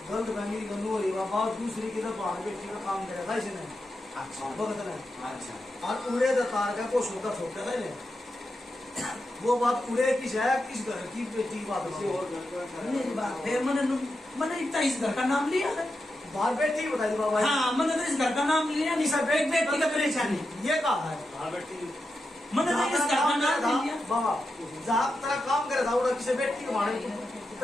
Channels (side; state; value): both; normal; correlation 0.88